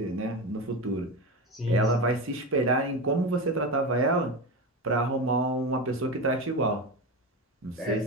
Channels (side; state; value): both; normal; correlation 0.21